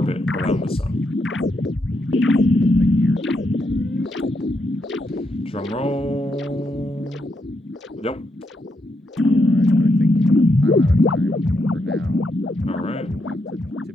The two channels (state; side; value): normal; both; correlation 0.80